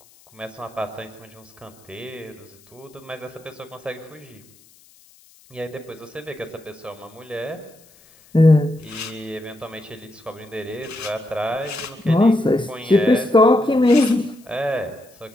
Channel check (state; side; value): noise; left; hiss, 28 dB below the sound